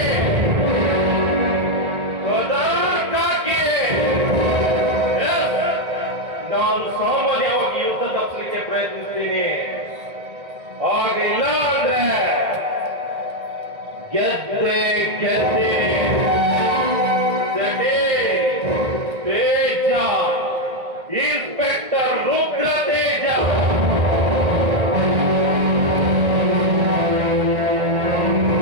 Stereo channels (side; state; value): left; late; 1.9 ms